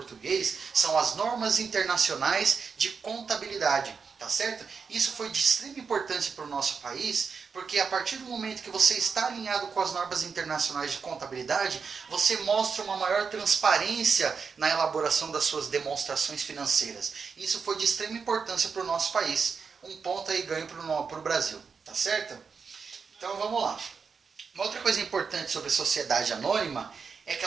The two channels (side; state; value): left; quieter; 5.6 dB